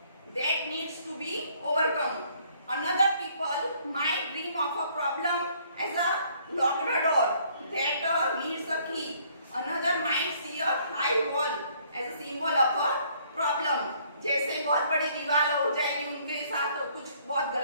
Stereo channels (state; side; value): inverted; both; correlation -0.63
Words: That needs to be overcome. Another people might dream of a problem as a locked door that needs a key. Another might see a high wall as a symbol of a problem। जैसे बहुत बड़ी दीवार हो जाएगी उनके साथ, कुछ बहुत